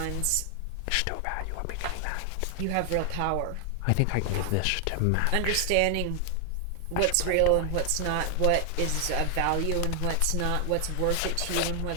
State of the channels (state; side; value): different; both; correlation 0.00